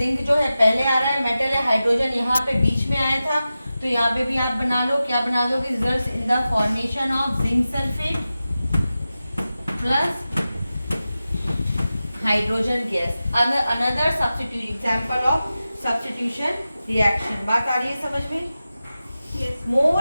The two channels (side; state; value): both; inverted; correlation -0.94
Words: जो है पहले आ रहा है, मेटल है, हाइड्रोजन यहाँ पे बीच में आया था, तो यहाँ पे भी आप बना लो, क्या बना दोगे, result in the formation of zinc sulphate plus hydrogen gas. Another substitute example of substitution reaction. बात आ रही है समझ में? Yes.